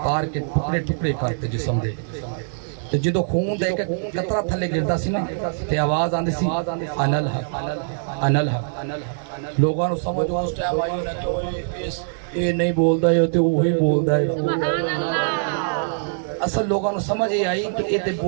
کے ٹکڑے ٹکڑے کرتے جسم دے تے جدو خون دے کے قطرہ تھلے گردا سی نا تے آواز آندی سی انا الحق انا الحق لوگوں نے سمجھ اس ٹائم آئی نا کہ یہ نہیں بولدا ہے تے وہی بولدا ہے اصل لوگوں نے سمجھ یہ آئی کہ یہ تے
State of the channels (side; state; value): left; silent; digital silence